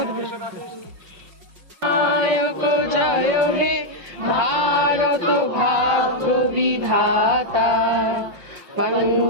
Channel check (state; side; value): late; left; 5.5 ms